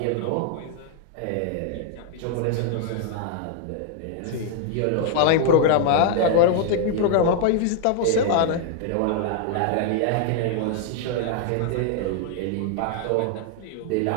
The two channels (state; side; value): different; both; correlation 0.00